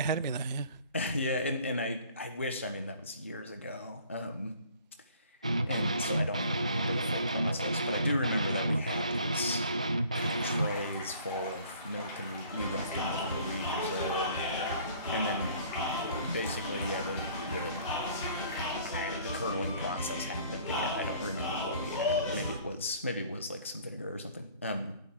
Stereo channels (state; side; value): inverted; both; correlation -0.54